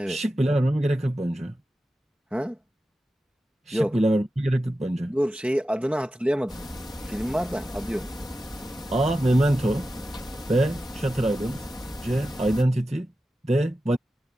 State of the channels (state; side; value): normal; both; correlation 0.92